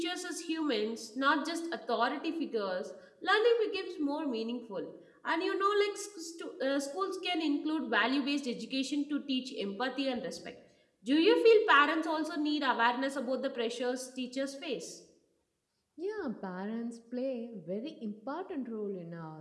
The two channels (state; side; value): identical; both; correlation 1.00